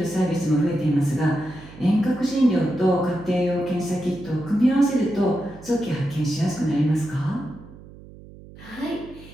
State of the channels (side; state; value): right; noise; hum, 19 dB below the sound